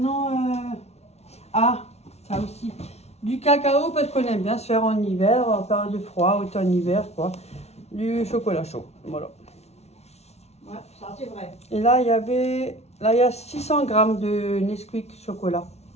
ah, ça aussi. Du cacao, parce qu'on aime bien se faire en hiver, en période de froid, automne-hiver, quoi. Du chocolat chaud, voilà. Ouais, ça c'est vrai. Et là, il y avait... Là, il y a 600 grammes de Nesquik chocolat.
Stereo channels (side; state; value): right; late; 0.31 ms